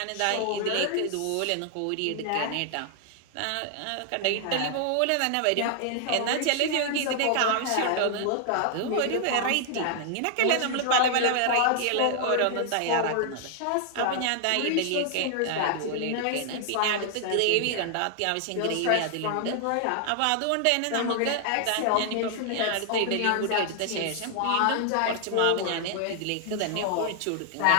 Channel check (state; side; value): different; both; correlation 0.00